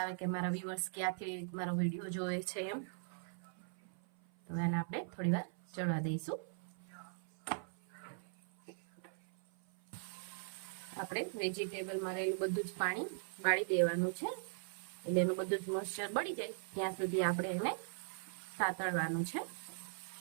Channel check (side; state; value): left; silent; 51 dB below the other